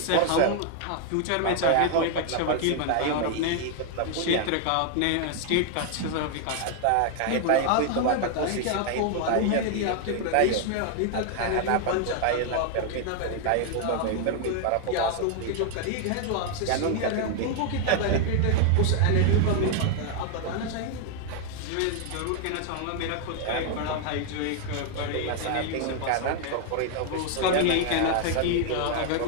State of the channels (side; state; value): both; different; correlation 0.00